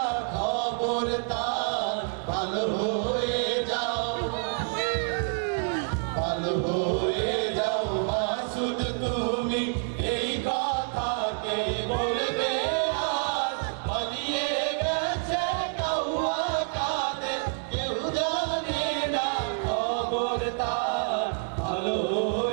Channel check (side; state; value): left; silent; 59 dB below the other